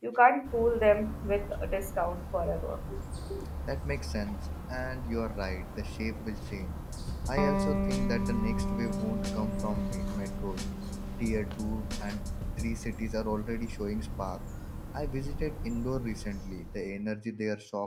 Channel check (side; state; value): both; identical; correlation 1.00